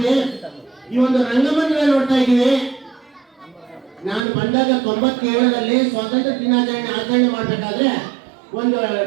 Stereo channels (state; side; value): drops out; left; at 4.2 s